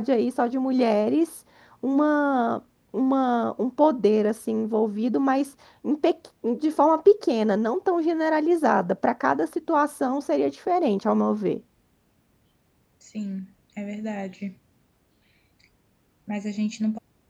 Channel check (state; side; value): identical; both; correlation 1.00